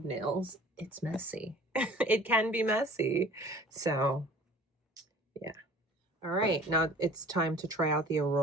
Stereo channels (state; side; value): normal; both; correlation 0.47